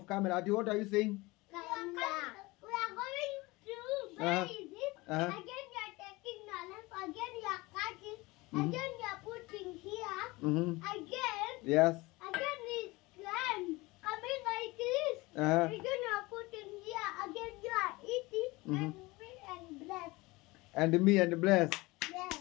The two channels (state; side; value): quieter; right; 22.3 dB